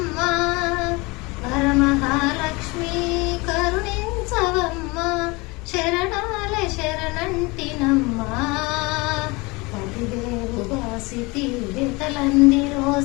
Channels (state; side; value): quieter; right; 25.3 dB